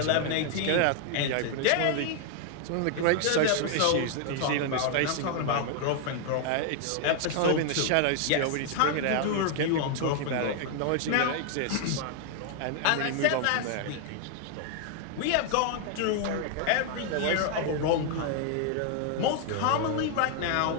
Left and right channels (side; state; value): both; different; correlation 0.00